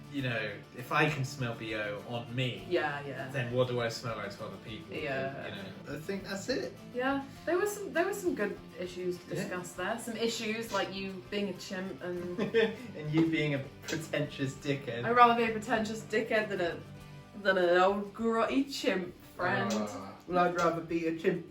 you know, if I can smell BO on me, Yeah. then what do I smell like to other people? Yeah. You know, I think that's it. Yeah, there were some good issues to discuss there. Some issues like you being a chimp and And you being a pretentious dickhead. I'd rather be a pretentious dickhead than an old grotty chimp friend. Well, I'd rather be a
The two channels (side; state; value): both; identical; correlation 1.00